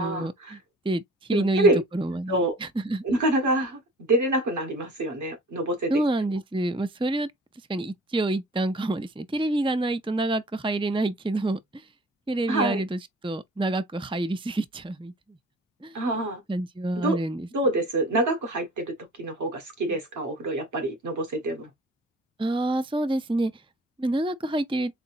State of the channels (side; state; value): both; normal; correlation 0.48